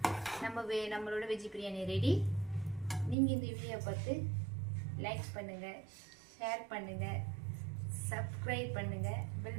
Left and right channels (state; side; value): drops out; left; at 3.2 s